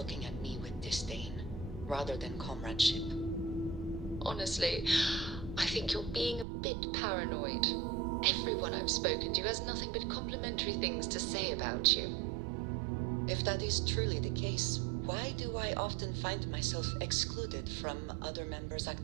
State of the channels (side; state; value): left; drops out; at 6.5 s